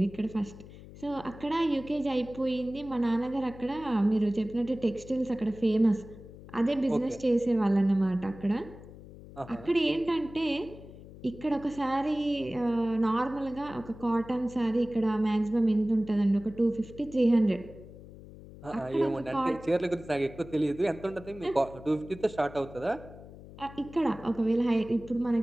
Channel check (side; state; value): left; noise; hum, 17 dB below the sound